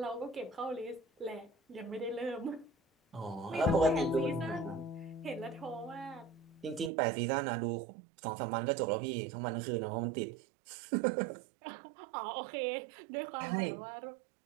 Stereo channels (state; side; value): drops out; left; at 6.9 s